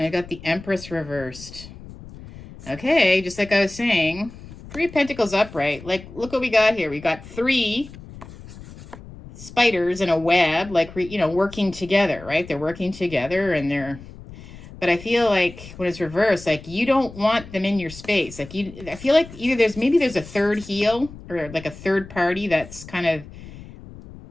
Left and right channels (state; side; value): noise; left; rumble, 17 dB below the sound